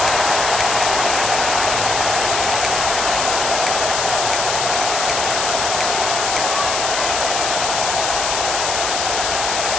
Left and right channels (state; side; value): noise; left; hiss, 1 dB below the sound